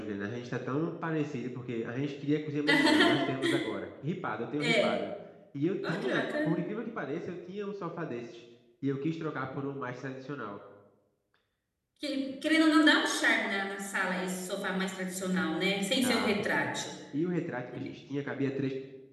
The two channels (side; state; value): both; identical; correlation 1.00